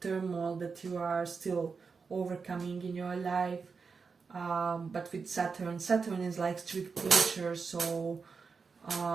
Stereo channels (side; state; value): left; quieter; 5.1 dB